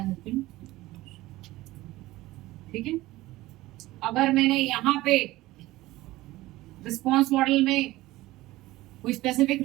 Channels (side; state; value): left; quieter; 17.8 dB